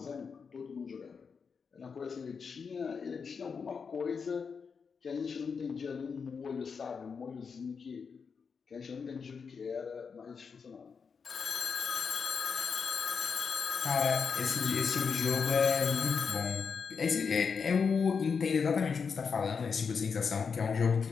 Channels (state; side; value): quieter; right; 5.8 dB